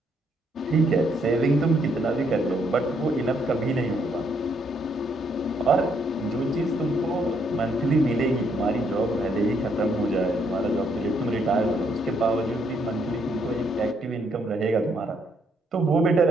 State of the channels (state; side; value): normal; both; correlation 0.72